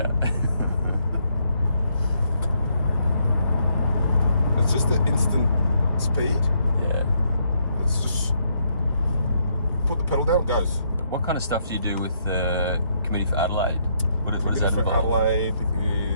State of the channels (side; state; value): both; inverted; correlation -0.74